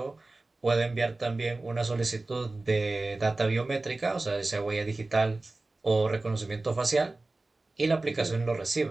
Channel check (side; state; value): left; quieter; 3.1 dB